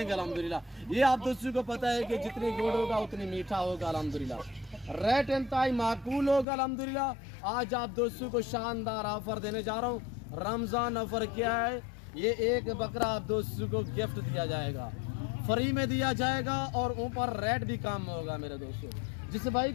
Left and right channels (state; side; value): drops out; right; at 6.5 s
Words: अल्हम्दुलिल्लाह। ये आप दोस्तों को पता है कि जितनी गुड़ होगा उतनी मीठा होगा अल्हम्दुलिल्लाह। रेट इंतहाई माकूल होगा अल्हम्दुलिल्लाह। आज आप दोस्तों को शानदार ऑफर देने जा रहा हूँ। रमज़ान ऑफर क्या है? ये एक बकरा आप दोस्तों को गिफ्ट दिया जाएगा, फ्री में दिया जाएगा और ऊपर रेट भी कम होगा मेरे दोस्तों। जिस भाई